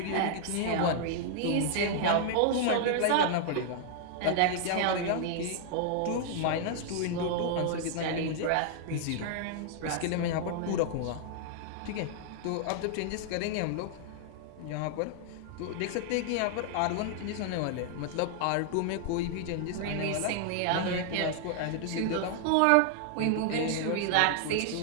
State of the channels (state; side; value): different; both; correlation 0.00